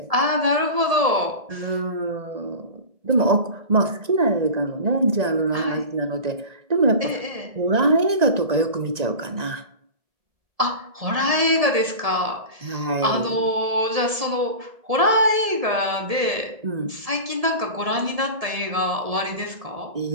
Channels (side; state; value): left; late; 1.7 ms